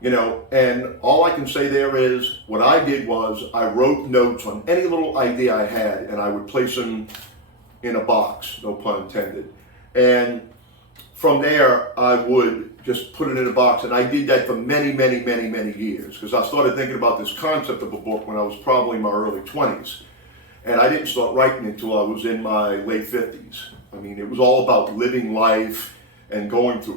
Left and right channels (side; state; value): both; normal; correlation 0.05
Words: And all I can say there is, what I did was I wrote notes on any little idea I had, and I would place them in a box, no pun intended. And from there, I would just put it in a box, and I did that for many, many, many, many years, because I started thinking about this concept of a book when I was probably in my early 20s. And I didn't start writing until I was in my late 50s. I mean, it was all about living life and going